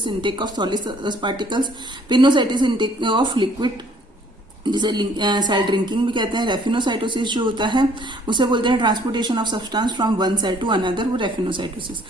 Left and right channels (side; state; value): both; normal; correlation 0.60